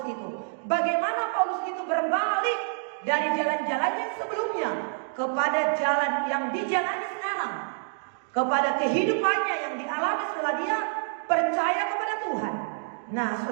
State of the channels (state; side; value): silent; left; digital silence